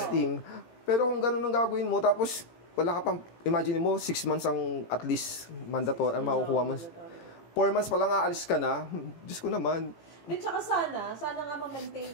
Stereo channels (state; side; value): late; right; 18 ms